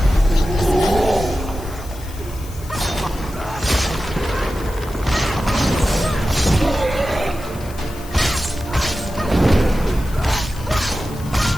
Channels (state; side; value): noise; left; hiss, 19 dB below the sound